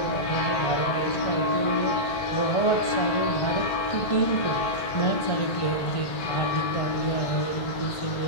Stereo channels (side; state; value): right; late; 1.6 ms